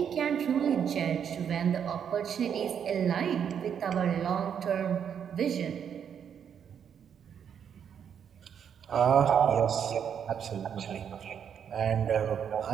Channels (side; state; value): left; quieter; 8.1 dB